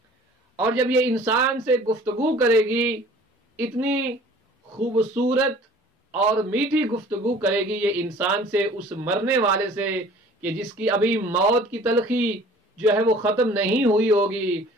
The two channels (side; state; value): both; normal; correlation 0.50